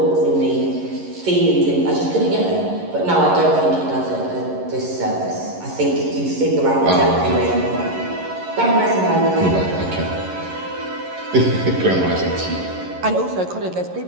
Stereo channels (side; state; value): left; late; 11 ms